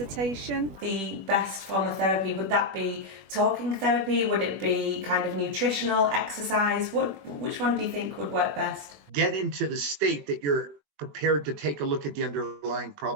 The best form of therapy, would that be talking therapy? Would it be kind of nutritional, exercise? Which one do you think would work best? Get into the state that you're prepared to take a look at the underlying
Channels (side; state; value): left; late; 21 ms